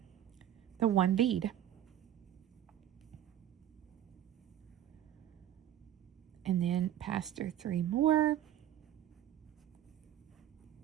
the one bead. And then pass through 3 more.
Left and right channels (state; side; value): quieter; left; 11.4 dB